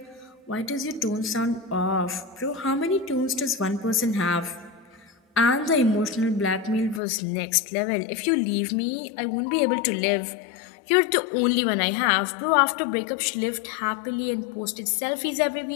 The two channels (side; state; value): right; drops out; at 7.0 s